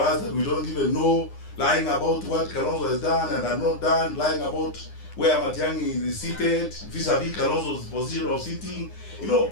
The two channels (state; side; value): late; right; 9.8 ms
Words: that we don't even know, lying about what Kalonzo has done and has not done, lying about where Matiang'i is seated, vis-a-vis Kalonzo's position of sitting. You know,